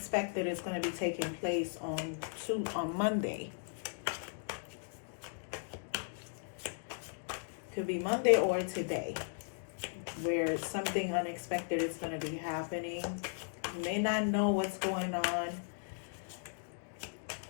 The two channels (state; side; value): silent; right; digital silence